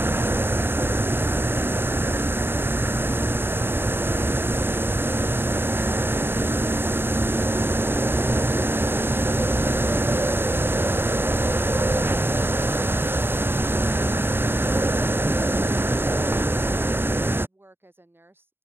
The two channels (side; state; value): left; late; 0.11 ms